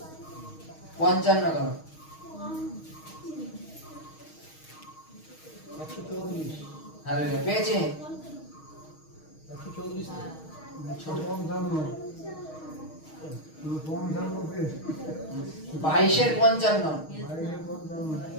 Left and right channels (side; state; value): right; late; 6.4 ms